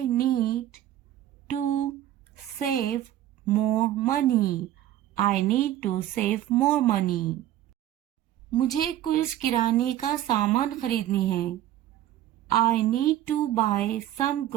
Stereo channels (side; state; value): left; quieter; 12.8 dB